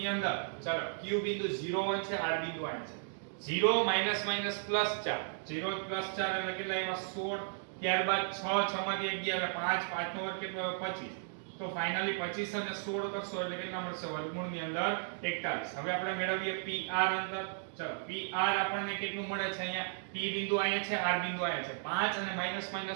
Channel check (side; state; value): left; silent; digital silence